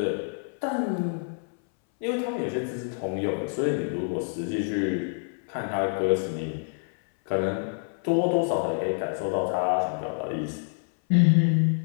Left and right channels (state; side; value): silent; right; 60 dB below the other